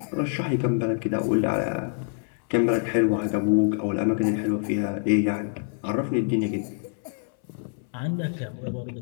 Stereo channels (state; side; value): silent; right; 61 dB below the other